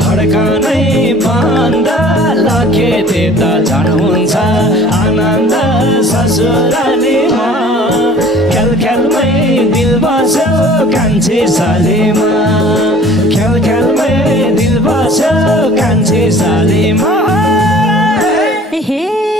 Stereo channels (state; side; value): normal; both; correlation 0.49